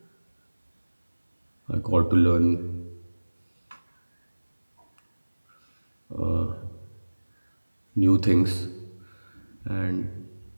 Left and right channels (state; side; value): inverted; both; correlation -1.00